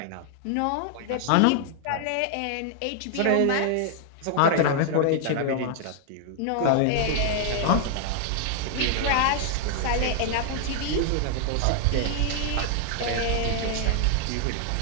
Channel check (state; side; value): different; both; correlation 0.00